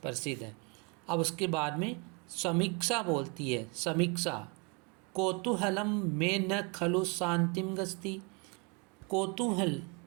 प्रसिद्ध है। अब उसके बाद में समीक्षा बोलती है, समीक्षा कौतूहलम में न खलु शांतिम गस्ती। कौतूहल,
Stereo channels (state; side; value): quieter; left; 31.4 dB